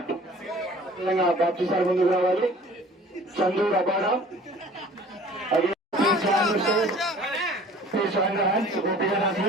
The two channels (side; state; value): both; normal; correlation 0.49